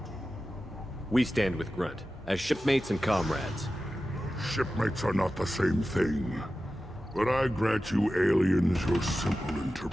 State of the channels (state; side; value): normal; both; correlation 0.94